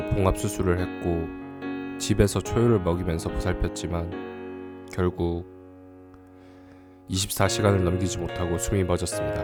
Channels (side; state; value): both; identical; correlation 1.00